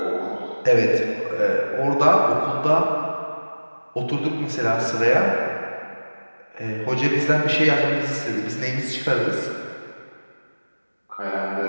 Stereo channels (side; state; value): both; inverted; correlation -1.00